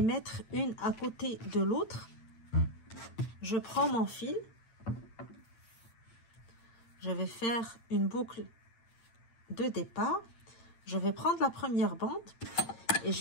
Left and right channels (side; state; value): right; late; 8.8 ms